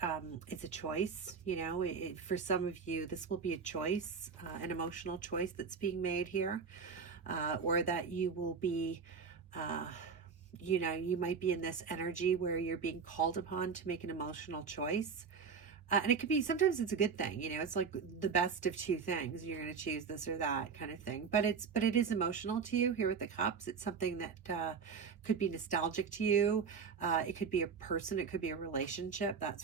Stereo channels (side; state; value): left; quieter; 5.8 dB